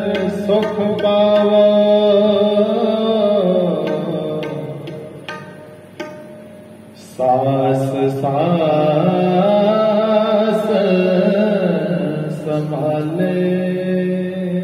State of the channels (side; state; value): both; identical; correlation 1.00